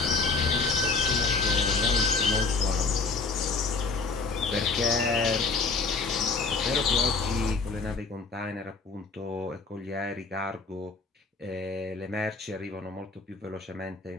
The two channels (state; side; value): quieter; right; 4.2 dB